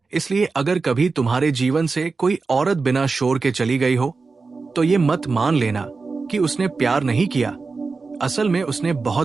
इसलिए अगर कभी तुम्हारे जीवन से कोई औरत बिना शोर के चली गई हो, तो ये मत मान लेना कि उसने प्यार नहीं किया। असल में उसने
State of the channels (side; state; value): left; quieter; 4.3 dB